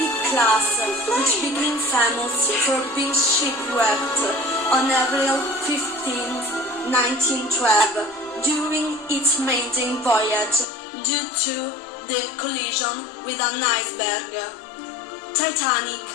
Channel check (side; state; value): right; drops out; at 10.7 s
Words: class, which became famous for being shipwrecked on April 15, 1912, during its maiden voyage due to the collision with an iceberg. Titanic